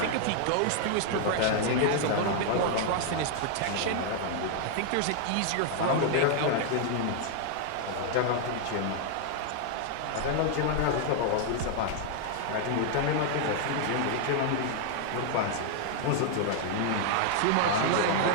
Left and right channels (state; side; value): different; both; correlation 0.00